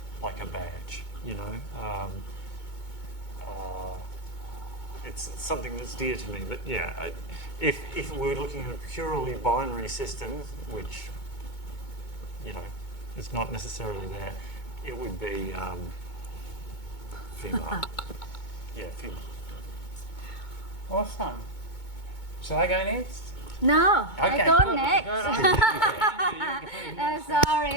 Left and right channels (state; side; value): late; right; 2.2 ms